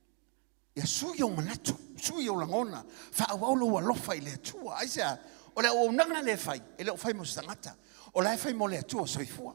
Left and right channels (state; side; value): quieter; left; 38.5 dB